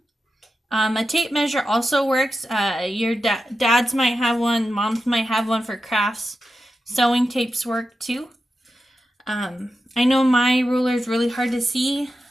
A tape measure also works. Your dads might have one, moms might have one for crafts. Sewing tapes work too. I know my ruler is really hard to see,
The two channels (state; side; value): normal; both; correlation 0.90